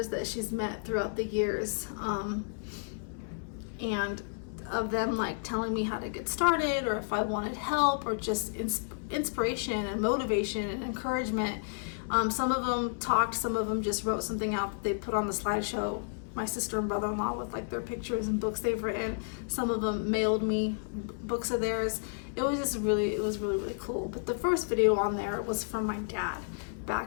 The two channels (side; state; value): right; silent; digital silence